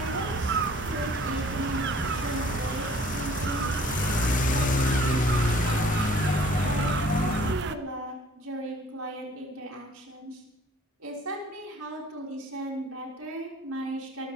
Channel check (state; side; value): normal; both; correlation 0.54